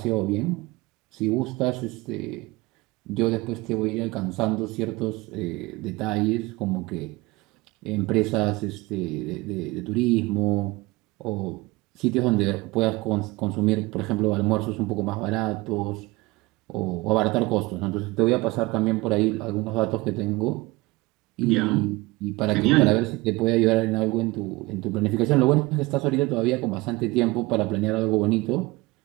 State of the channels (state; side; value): quieter; left; 21.9 dB